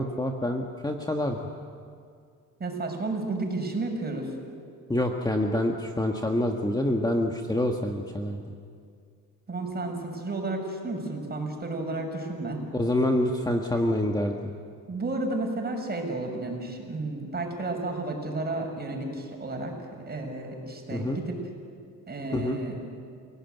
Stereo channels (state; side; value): normal; both; correlation 0.61